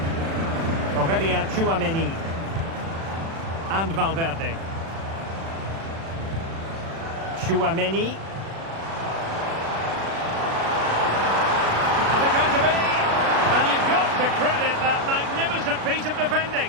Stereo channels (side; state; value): left; late; 36 ms